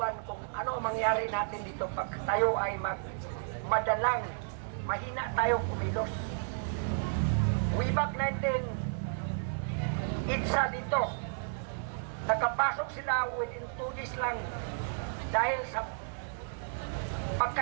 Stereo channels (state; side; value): silent; left; digital silence